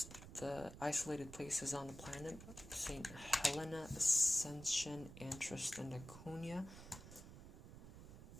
the isolated places on the planet: St. Helena, Ascension, Antris, and Laconia.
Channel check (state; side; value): noise; right; rumble, 13 dB below the sound